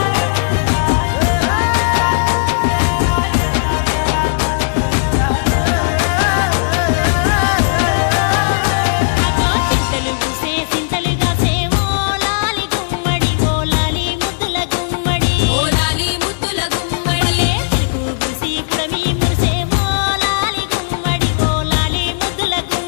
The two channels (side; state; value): right; silent; digital silence